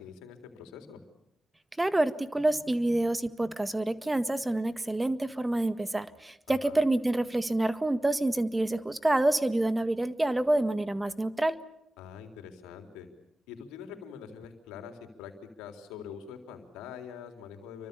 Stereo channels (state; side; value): normal; both; correlation 0.97